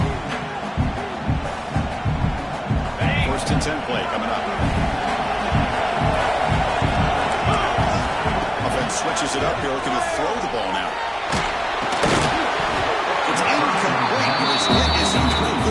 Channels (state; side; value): identical; both; correlation 1.00